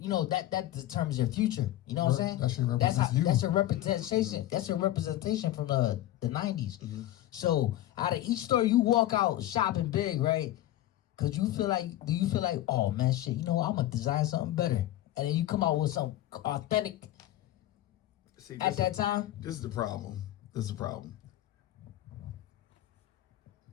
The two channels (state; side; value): quieter; right; 14.2 dB